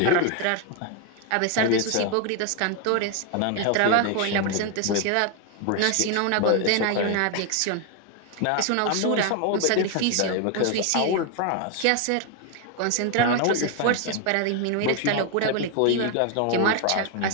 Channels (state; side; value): different; both; correlation 0.01